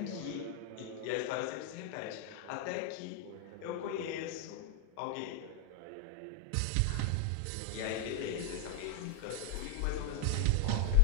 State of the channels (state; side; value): different; both; correlation -0.01